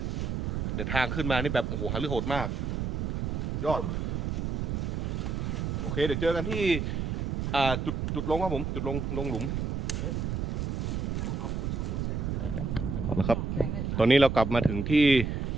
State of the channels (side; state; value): right; noise; rumble, 1 dB below the sound